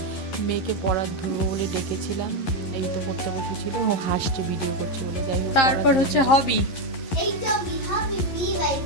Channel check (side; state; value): right; late; 11 ms